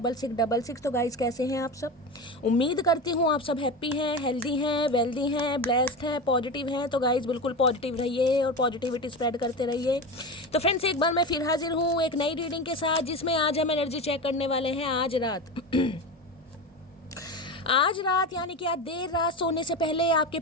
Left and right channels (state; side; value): normal; both; correlation 0.24